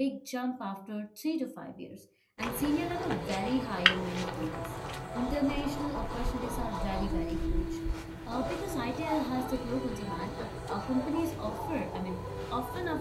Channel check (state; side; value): identical; both; correlation 1.00